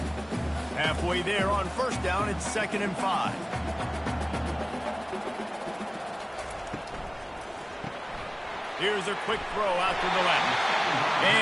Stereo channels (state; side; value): identical; both; correlation 1.00